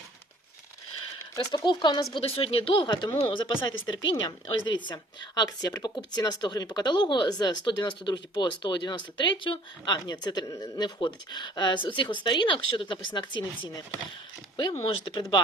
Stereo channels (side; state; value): both; normal; correlation 0.54